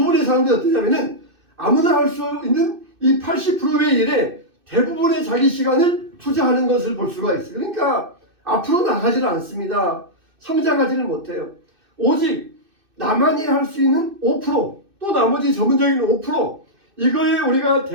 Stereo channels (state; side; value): late; left; 2.6 ms